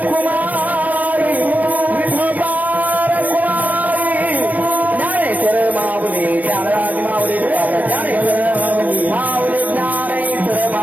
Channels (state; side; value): late; left; 0.076 ms